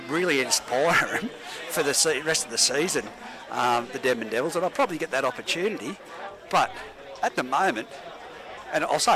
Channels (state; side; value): identical; both; correlation 1.00